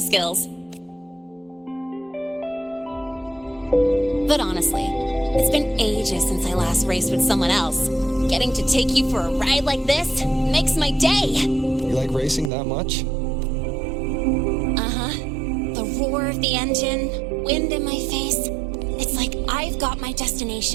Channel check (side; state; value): left; drops out; at 12.5 s